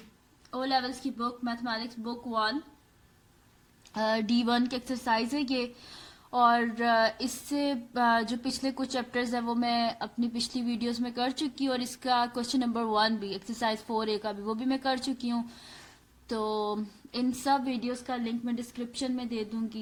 ओ लेवल्स की बुक मैथमेटिक्स बुक 1 D1 की एक्सरसाइज है ये। और इससे जो पिछले कुछ चैप्टर्स हैं वो मैं अपनी पिछली वीडियोस में कर चुकी हूँ, और इसका क्वेश्चन नंबर 1 भी एक्सरसाइज 4A का भी वो भी मैं कर चुकी हूँ। तो इन सब वीडियोस का लिंक मैं डिस्क्रिप्शन में दे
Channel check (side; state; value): both; identical; correlation 1.00